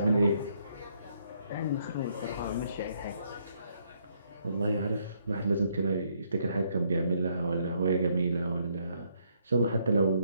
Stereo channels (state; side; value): inverted; both; correlation -0.71